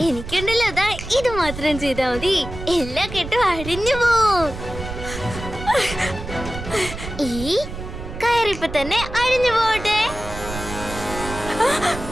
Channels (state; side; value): noise; right; rumble, 9 dB below the sound